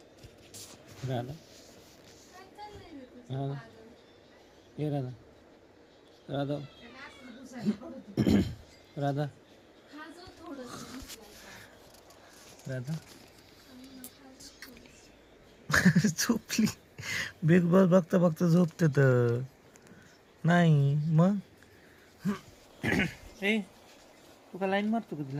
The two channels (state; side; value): identical; both; correlation 1.00